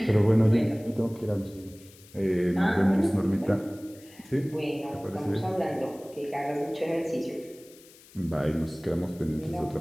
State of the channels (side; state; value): left; noise; hiss, 24 dB below the sound